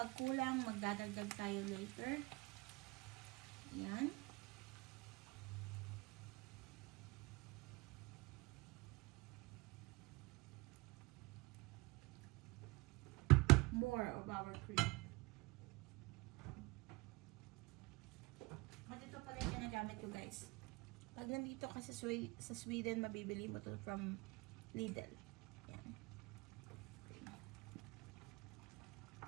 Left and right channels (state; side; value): quieter; left; 24.5 dB